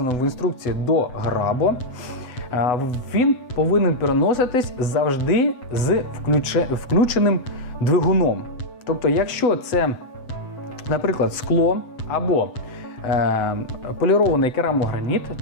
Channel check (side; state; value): right; late; 8.0 ms